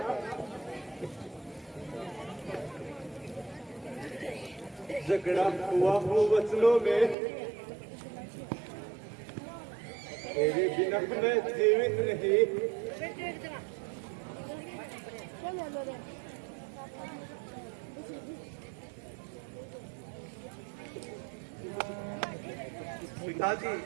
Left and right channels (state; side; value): drops out; left; at 7.2 s